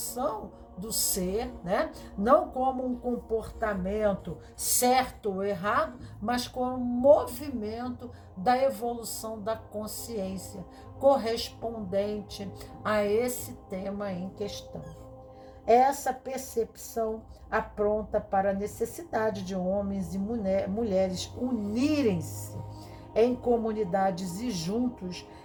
do ser, né? Não como um comportamento certo ou errado, mas como um movimento da evolução da consciência correspondente a esse tema em questão. Essa percepção apronta para a necessidade de homens e mulheres unirem-se em comunidades e juntos,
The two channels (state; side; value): identical; both; correlation 1.00